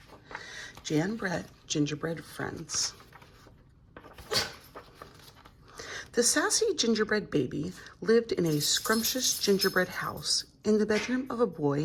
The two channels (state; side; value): identical; both; correlation 1.00